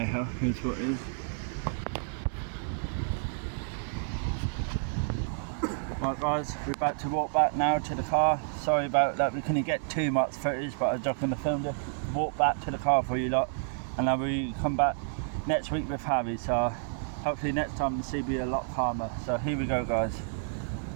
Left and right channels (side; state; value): left; silent; digital silence